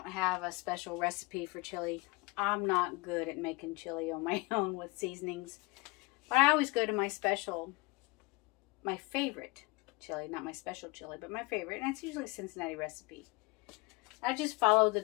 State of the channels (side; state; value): right; quieter; 25.4 dB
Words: have a special recipe for chili. I'm not good at making chili on my own with seasonings. But I always go to my favorite chili, not my special chili, but my favorite, and it's usually a Cincinnati recipe. I just follow the